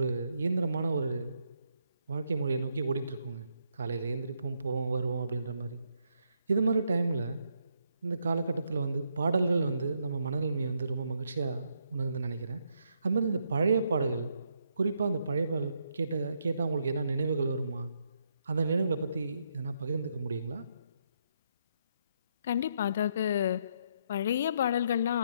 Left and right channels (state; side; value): inverted; both; correlation -0.76